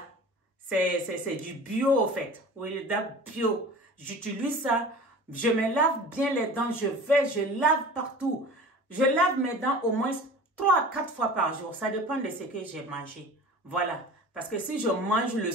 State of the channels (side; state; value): both; normal; correlation 0.40